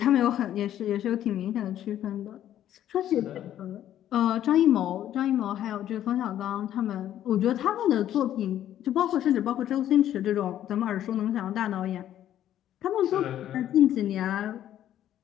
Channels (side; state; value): right; quieter; 11.6 dB